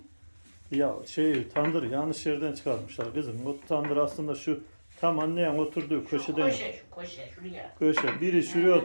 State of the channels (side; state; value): both; inverted; correlation -1.00